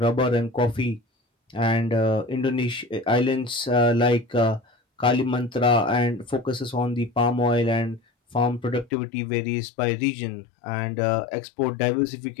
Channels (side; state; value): right; drops out; at 8.9 s